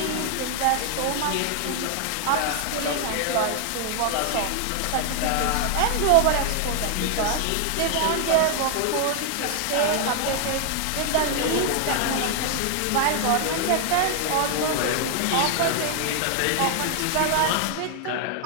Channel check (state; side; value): different; both; correlation 0.00